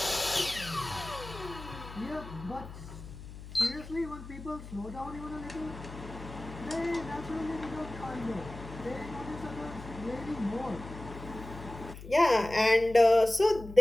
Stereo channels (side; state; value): left; noise; hum, 13 dB below the sound